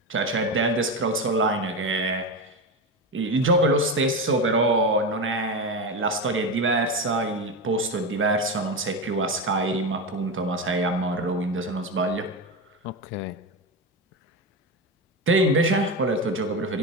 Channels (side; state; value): both; normal; correlation 0.18